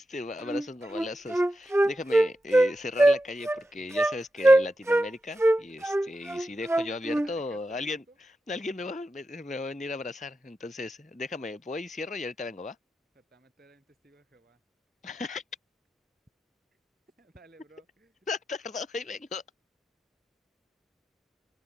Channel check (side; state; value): both; normal; correlation 0.89